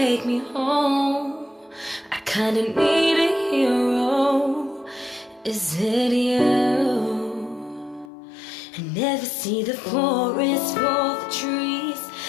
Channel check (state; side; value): drops out; right; at 8.1 s